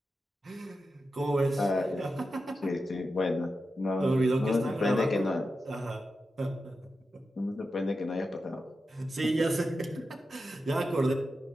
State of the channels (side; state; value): both; normal; correlation 0.90